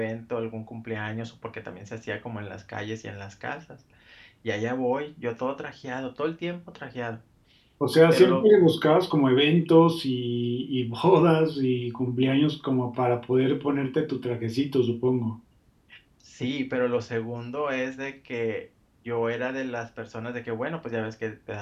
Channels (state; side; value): identical; both; correlation 1.00